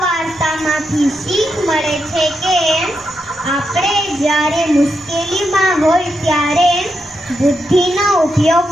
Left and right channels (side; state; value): both; normal; correlation 0.84